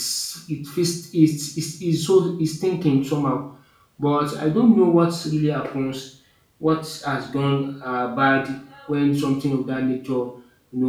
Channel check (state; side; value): identical; both; correlation 1.00